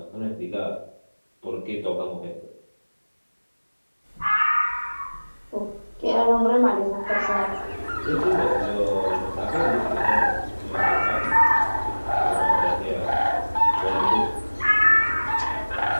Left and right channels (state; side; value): inverted; both; correlation -1.00